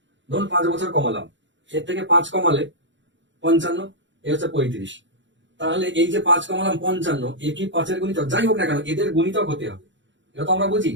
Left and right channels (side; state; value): left; late; 0.54 ms